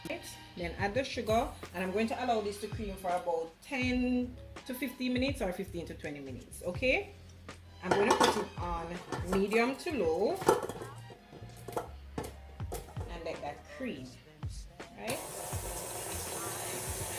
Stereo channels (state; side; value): identical; both; correlation 1.00